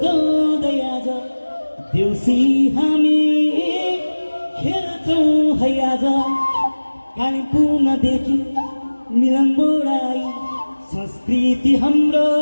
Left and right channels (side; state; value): both; inverted; correlation -1.00